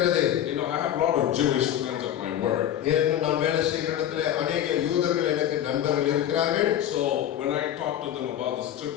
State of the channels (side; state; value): right; quieter; 11.0 dB